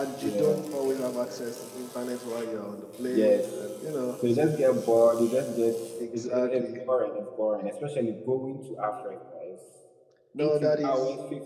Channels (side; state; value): both; identical; correlation 1.00